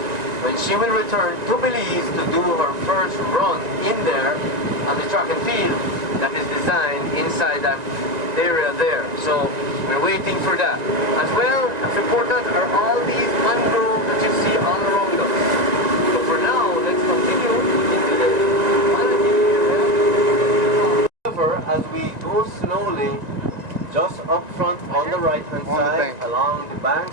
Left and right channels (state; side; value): late; left; 1.9 ms